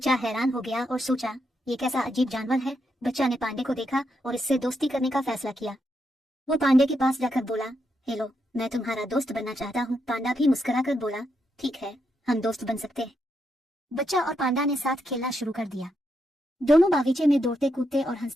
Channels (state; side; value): normal; both; correlation 0.81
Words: हैरान हो गया और सोचा, ये कैसा अजीब जानवर है। बच्चा ने पांडे को देखा और इससे दोस्ती करने का फैसला किया। वो पांडे के पास जाकर बोला, हेलो, मैं तुम्हारा दोस्त बनना चाहता हूँ। पांडा भी मुस्कुराकर बोला, ठीक है, हम दोस्त बन सकते हैं। बच्चा और पांडा ने साथ खेलना शुरू कर दिया। दोनों बागीचे में दौड़ते कूदते और